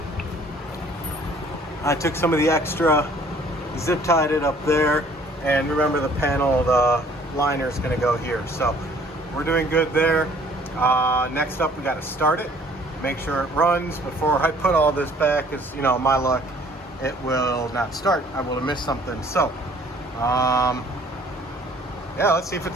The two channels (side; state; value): both; normal; correlation 0.56